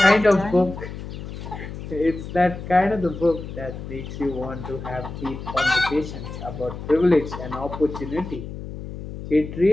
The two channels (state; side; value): noise; left; hum, 10 dB below the sound